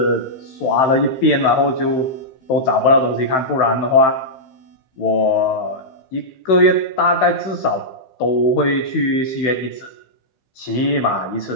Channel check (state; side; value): late; right; 15 ms